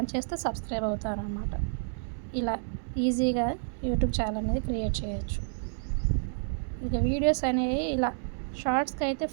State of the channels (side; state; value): left; silent; 58 dB below the other